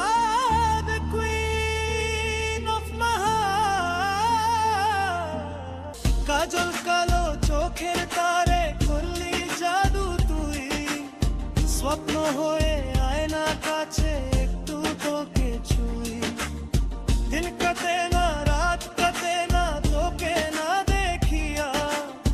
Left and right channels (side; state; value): both; identical; correlation 1.00